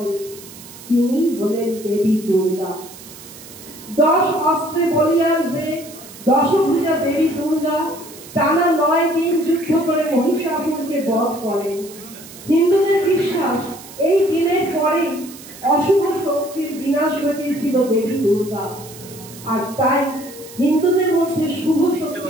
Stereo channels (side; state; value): right; noise; hiss, 17 dB below the sound